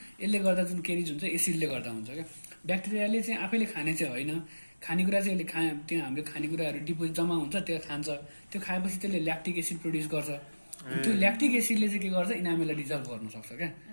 यसले गर्दा जुन केरिज हुन्छ एसिडले गर्दा हुन्छ क्या ब्याक्टेरियाले चाहिँ आफैले खाने चाहिँ होइन खानेकुरा चाहिँ यसले त्यो हाम्रो खानेकुराहरू डिपोजिट जम्मा हुन्छ त्यो खान्छ त्यो खाएपछि त्यसले ल्याक्टिक एसिड प्रड्युस गर्छ त्यो ल्याक्टिक एसिडले चाहिँ के गर्छ इनामेललाई डिजल्भ गर्न सक्छ क्या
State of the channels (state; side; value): inverted; both; correlation -1.00